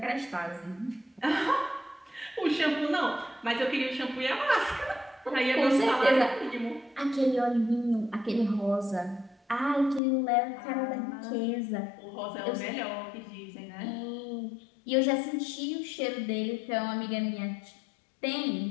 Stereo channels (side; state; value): right; drops out; at 10.0 s